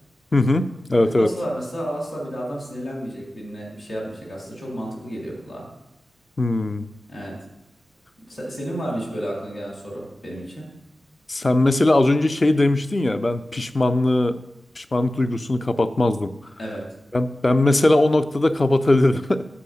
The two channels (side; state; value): both; normal; correlation 0.95